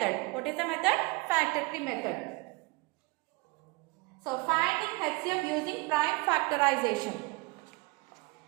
What is the method? Factor tree method. So finding HCF using prime factorization.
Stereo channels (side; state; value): left; quieter; 26.2 dB